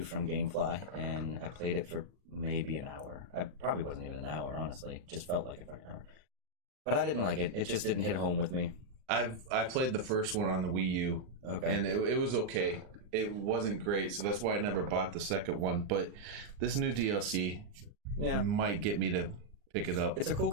GameFly, and I played it for maybe an hour. I probably wasn't even an hour, honestly. It just felt like a fucking hour. But I didn't like it. It just didn't hit home with me. I played the first one on the Wii U. Okay. And it was okay. It wasn't great, so that's why I never bought the second one. But this new DLC might get me to pick it up. It's a cool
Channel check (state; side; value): late; left; 39 ms